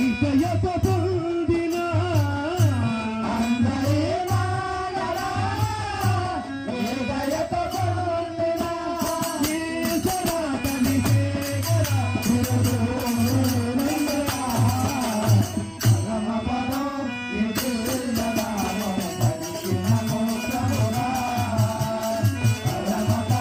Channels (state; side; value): identical; both; correlation 1.00